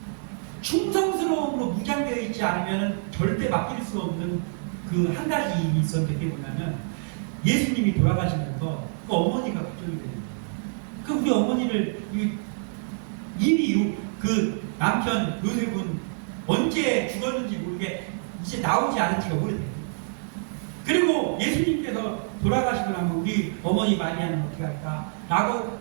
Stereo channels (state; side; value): silent; left; digital silence